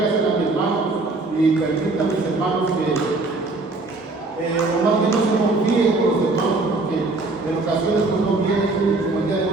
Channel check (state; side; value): quieter; left; 3.3 dB